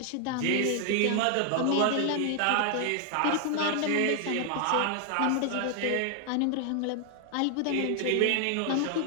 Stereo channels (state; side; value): different; both; correlation 0.00